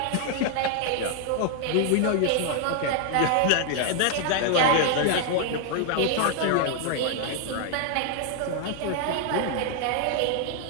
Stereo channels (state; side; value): different; both; correlation 0.00